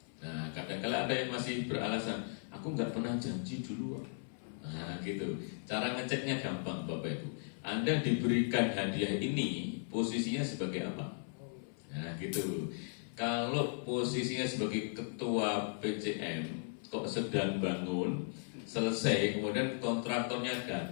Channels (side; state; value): right; silent; 53 dB below the other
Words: Nah, kadang-kala ada yang masih beralasan, aku nggak pernah janji dulu. Nah, gitu. Cara ngeceknya gampang, Bapak Ibu. Anda diberikan hadiah ini, posisinya sebagai apa? Nah, gitu. Kalau posisinya sebagai ketua PCM, kok sedang bangun, selesai, kemudian kontraktornya